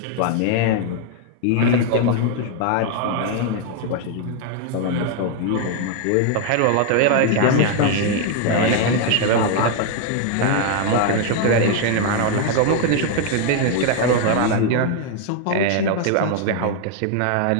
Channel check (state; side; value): different; both; correlation 0.00